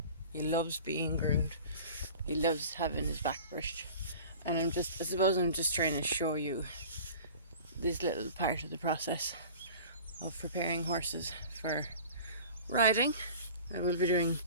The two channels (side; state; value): both; inverted; correlation -0.41